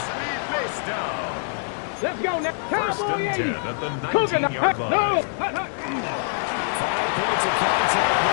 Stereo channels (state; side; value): silent; right; digital silence